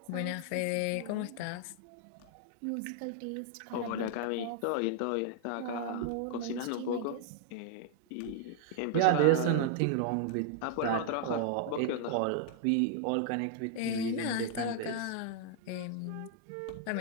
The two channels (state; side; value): different; both; correlation 0.00